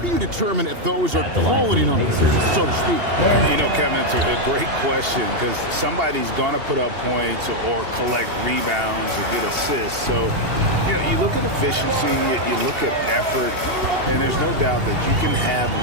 you determine if those are quality numbers, so to speak? You know, Kevin, it's a great question because somebody's going to put up points or collect rebounds or get assists. So, you know, you look at efficiency, you look at effort, and there's no doubt that you can have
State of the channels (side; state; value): left; late; 2.8 ms